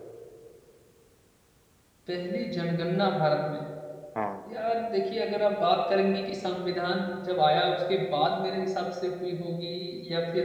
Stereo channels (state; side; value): identical; both; correlation 1.00